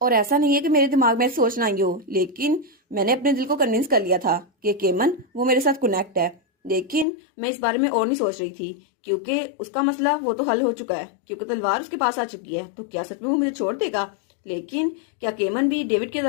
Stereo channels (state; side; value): drops out; right; at 7.1 s